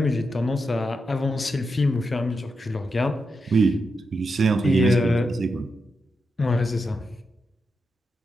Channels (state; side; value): normal; both; correlation 0.85